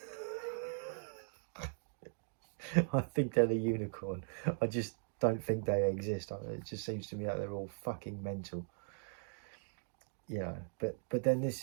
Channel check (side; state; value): left; silent; digital silence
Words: I think they're the unicorn. I just don't think they exist. It just seems to me like they're all fucking mental. You know, but then